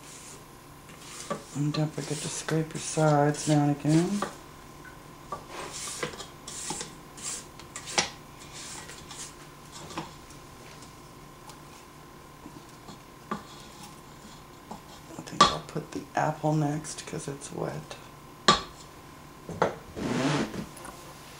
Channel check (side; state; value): both; identical; correlation 1.00